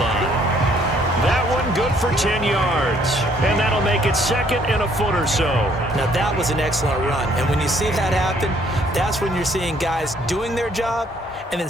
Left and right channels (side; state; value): both; normal; correlation 0.64